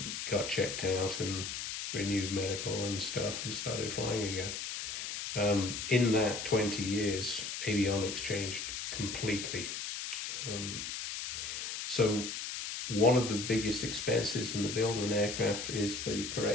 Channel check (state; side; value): noise; left; hiss, 5 dB below the sound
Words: got checked out and renewed medical and stuff and started flying again. In that 20 years, avionics changed completely. So one of the biggest expenses in the build of an aircraft is the